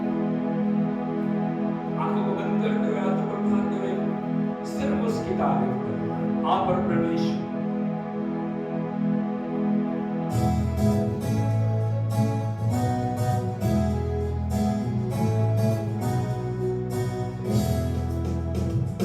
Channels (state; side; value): identical; both; correlation 1.00